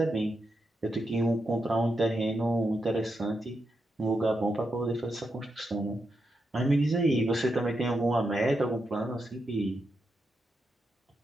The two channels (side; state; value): both; normal; correlation 0.85